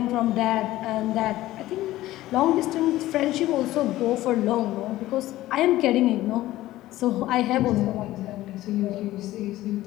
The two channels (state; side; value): quieter; right; 15.9 dB